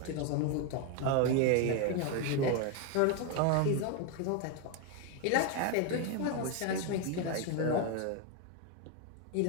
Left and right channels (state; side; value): different; both; correlation 0.01